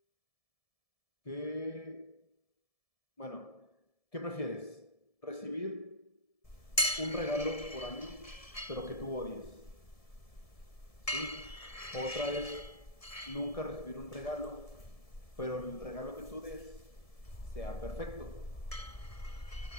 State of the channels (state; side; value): late; right; 1.7 ms